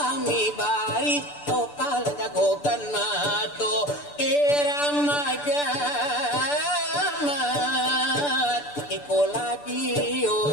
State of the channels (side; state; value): right; late; 6.9 ms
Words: bari topal jagokan mato irama gamat ikola